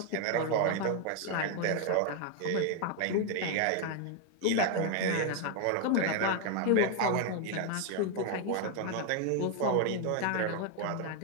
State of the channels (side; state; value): both; different; correlation 0.01